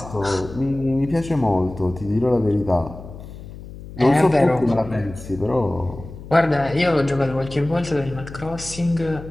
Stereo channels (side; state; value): left; noise; hum, 14 dB below the sound